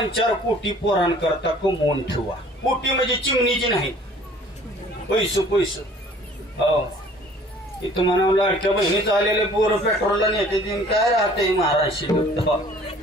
कोटी पोरांकरता कमवून ठेवा. कोटी म्हणजे चिमणीची नाही, पैसे. हो, इथं म्हणा लाडक्या बहिणीचं आलेले पोरं पेट्रोलला नेते दिन काय राहते महाराष्ट्र.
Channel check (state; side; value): normal; both; correlation 0.53